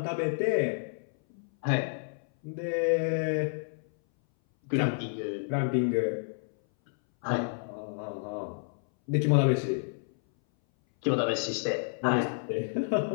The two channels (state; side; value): silent; right; 58 dB below the other